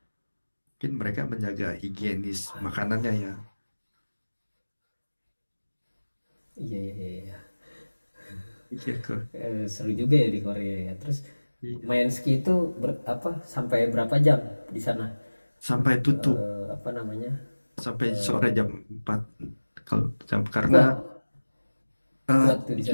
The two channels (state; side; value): inverted; both; correlation -1.00